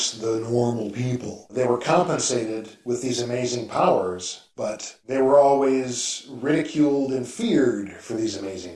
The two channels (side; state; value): both; identical; correlation 1.00